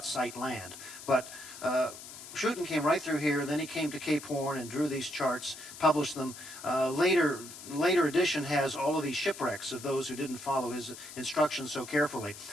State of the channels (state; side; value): noise; left; hiss, 14 dB below the sound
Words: sight land, but Schouten came right through here, then he came to Cape Horn and drew these charts, published them. Later edition has all of these shipwrecks of those who didn't follow his instructions so carefully.